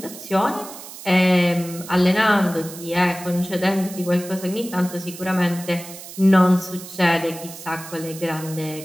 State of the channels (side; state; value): right; noise; hiss, 14 dB below the sound